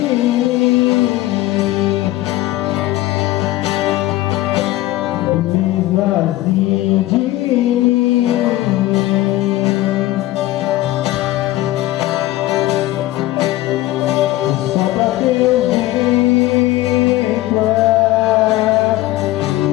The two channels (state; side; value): quieter; right; 16.7 dB